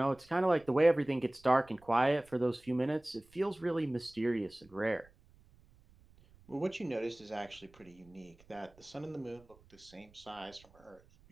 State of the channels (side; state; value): right; noise; rumble, 27 dB below the sound